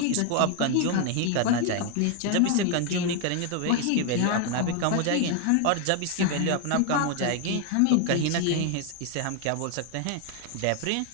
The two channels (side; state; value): both; different; correlation 0.01